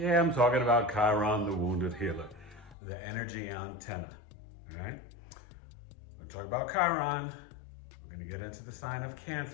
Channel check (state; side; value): drops out; right; at 2.8 s